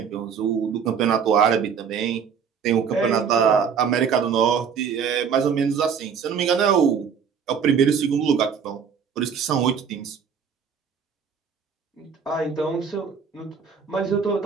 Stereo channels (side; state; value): left; quieter; 6.8 dB